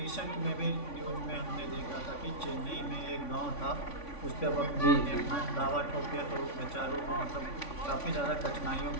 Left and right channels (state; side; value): late; right; 3.5 ms